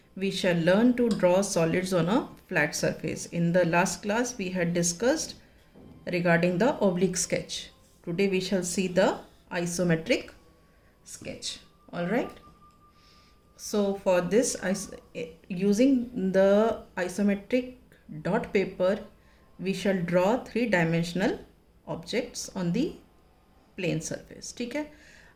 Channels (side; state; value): both; identical; correlation 1.00